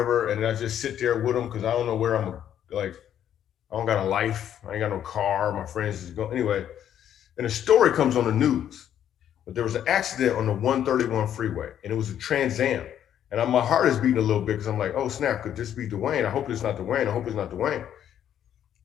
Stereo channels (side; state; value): right; quieter; 10.1 dB